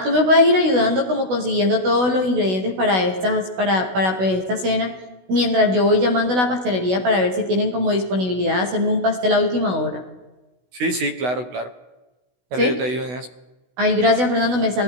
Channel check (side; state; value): left; late; 16 ms